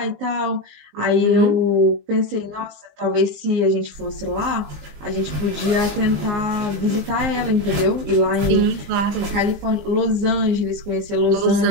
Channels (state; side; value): late; left; 20 ms